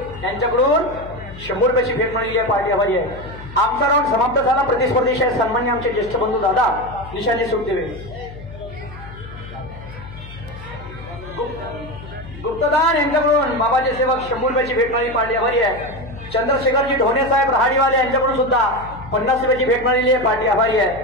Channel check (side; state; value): left; noise; hum, 15 dB below the sound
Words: यांच्याकडून 100 रुपयाची भेट मिळालेली आहे. पार्टी आभारी आहे. आमचा राऊंड समाप्त झाला. प्रतिस्पर्धी सन्मान्य आमचे ज्येष्ठ बंधू दादा निशांनी सुट देवे. गुप्तदान यांच्याकडून बाबाचे सेवक 100 रुपयाची भेट मिळाली. पार्टी आभारी आहे. चंद्रशेखरजी ढोणे साहेब रहाडीवाले यांच्याकडून सुद्धा 50 रुपयाची भेट मिळालेली आहे. पार्टी आभारी